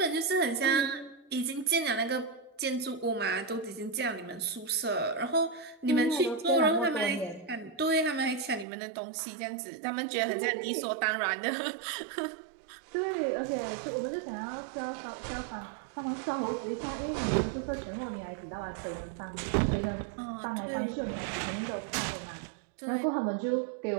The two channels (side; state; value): left; drops out; at 8.7 s